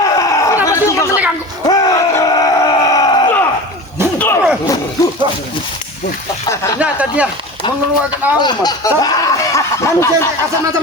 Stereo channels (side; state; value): both; normal; correlation 0.32